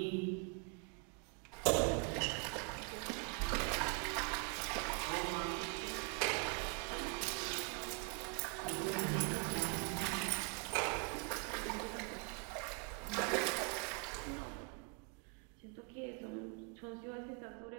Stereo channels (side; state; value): left; quieter; 34.2 dB